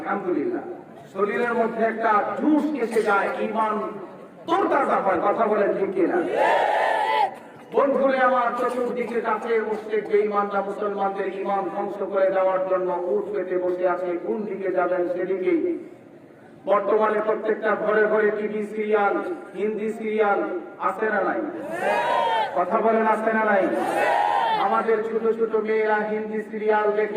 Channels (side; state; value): both; identical; correlation 1.00